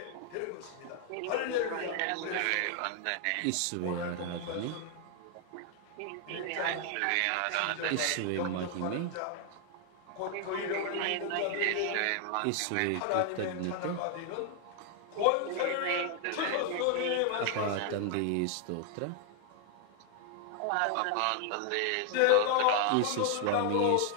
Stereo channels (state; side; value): different; both; correlation 0.00